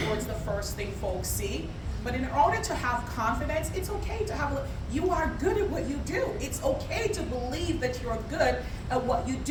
it's the first thing folks see. But in order to have confidence, it's okay to have, you are good at what you do. It's okay to believe that you're good at what you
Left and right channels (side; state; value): both; identical; correlation 1.00